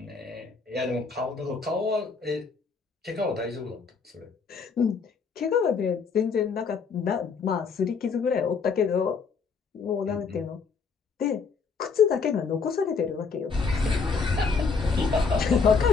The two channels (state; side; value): quieter; right; 5.2 dB